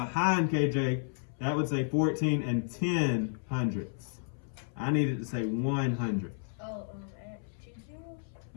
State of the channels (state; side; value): silent; right; 56 dB below the other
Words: KJ, that would say 14 and 10 hundredths. I need it to say 100. Oh, add 2 zeros?